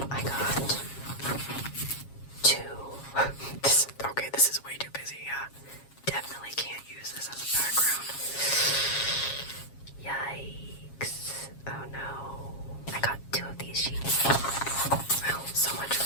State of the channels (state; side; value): late; right; 7.3 ms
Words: I got 2. This is way too busy. Definitely can't use this as a background. Yikes. Oh no. I got 2 of these sheets. Well, so much